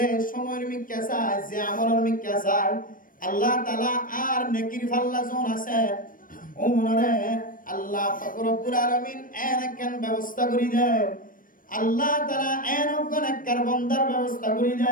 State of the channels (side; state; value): right; late; 0.40 ms